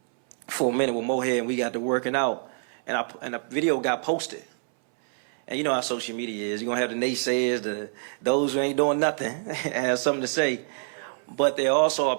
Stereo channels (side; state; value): left; silent; 61 dB below the other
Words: for a minute with Mohead, and we got to working out. And the video got posted. And you know how social media is. You're going to have the naysayers, those who ain't doing nothing, and have something to say. But there also are